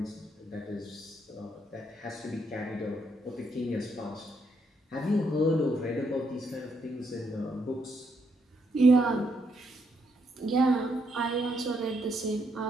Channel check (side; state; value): both; normal; correlation 0.76